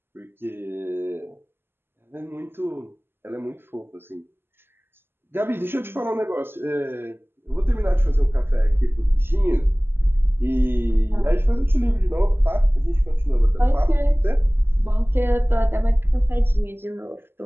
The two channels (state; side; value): late; left; 0.11 ms